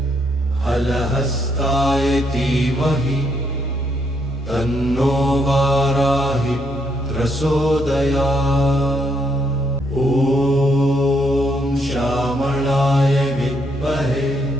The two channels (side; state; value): both; normal; correlation 0.74